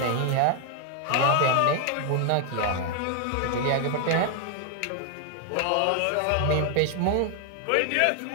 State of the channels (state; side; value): different; both; correlation 0.00